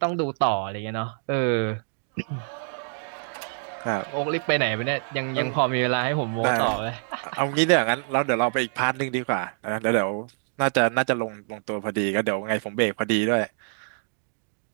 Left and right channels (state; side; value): silent; left; digital silence